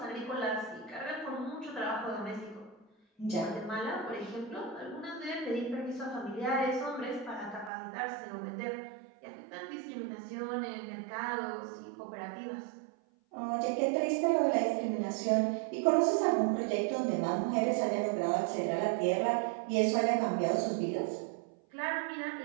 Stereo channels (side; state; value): left; drops out; at 7.7 s